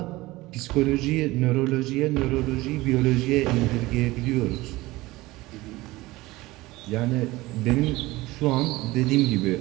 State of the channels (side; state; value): left; quieter; 19.6 dB